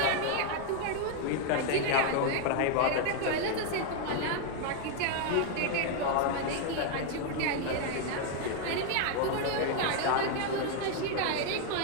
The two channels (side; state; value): both; different; correlation 0.00